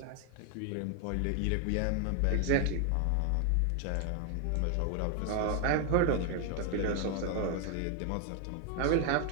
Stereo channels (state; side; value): different; both; correlation 0.01